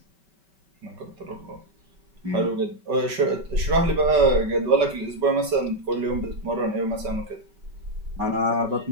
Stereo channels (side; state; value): left; late; 5.2 ms